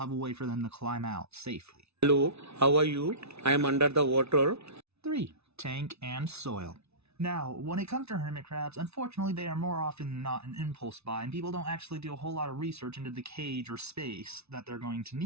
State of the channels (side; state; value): left; late; 0.80 ms